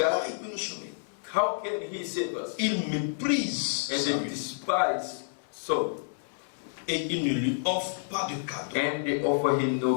il peut nous sauver? how can he save us? Il méprise And sa they vie. despise so, Et il ne lui offre pas de cadeau. and they offer him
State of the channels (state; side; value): silent; right; 58 dB below the other